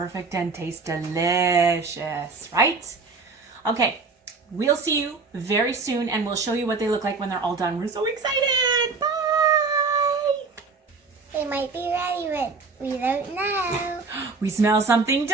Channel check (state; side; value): quieter; left; 4.3 dB